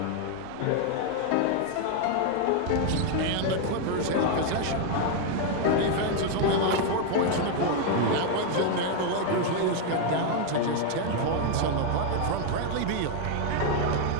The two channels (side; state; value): both; different; correlation 0.01